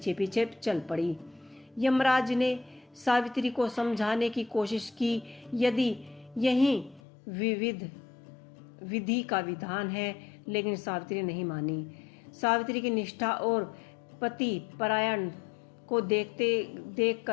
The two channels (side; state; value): right; drops out; at 7.0 s